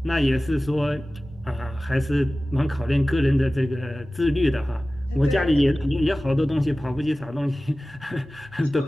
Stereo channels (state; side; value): normal; both; correlation 0.97